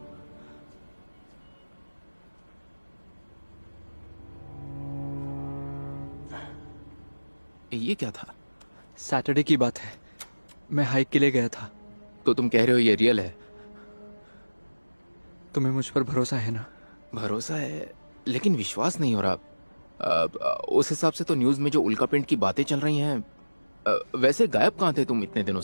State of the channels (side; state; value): both; inverted; correlation -1.00